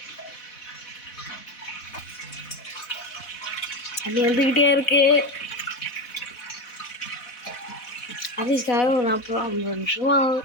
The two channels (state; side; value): late; right; 4.1 ms